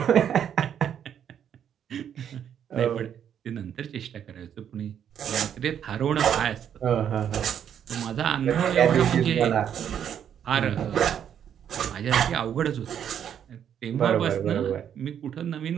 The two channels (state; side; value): quieter; left; 9.0 dB